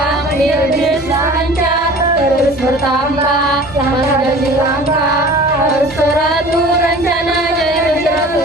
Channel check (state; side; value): normal; both; correlation 0.43